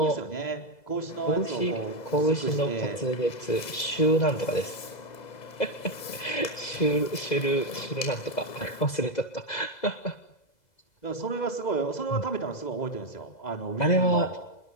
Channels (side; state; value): right; late; 2.0 ms